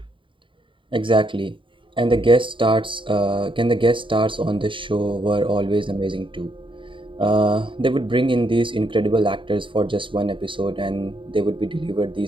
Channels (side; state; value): left; late; 0.24 ms